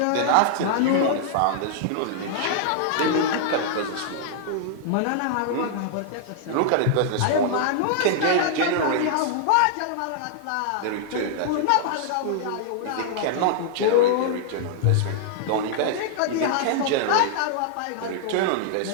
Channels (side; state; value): both; different; correlation -0.01